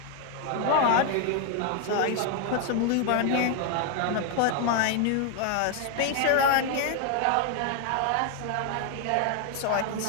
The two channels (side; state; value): both; different; correlation 0.01